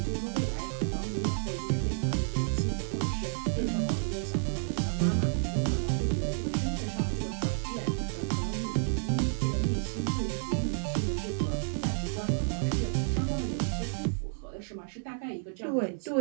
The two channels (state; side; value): silent; left; 57 dB below the other